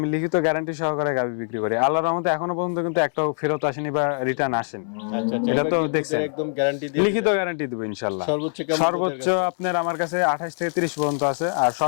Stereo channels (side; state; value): right; silent; digital silence